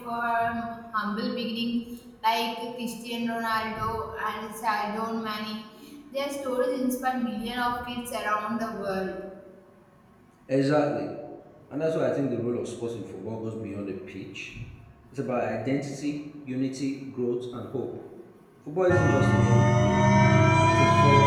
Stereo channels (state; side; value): identical; both; correlation 1.00